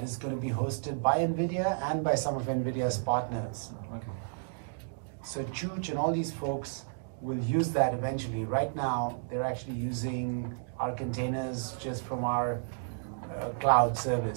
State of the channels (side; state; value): left; silent; digital silence